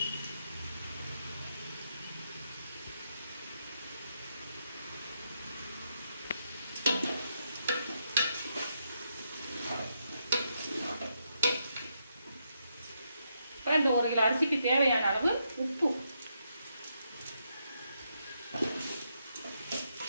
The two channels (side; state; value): both; inverted; correlation -0.80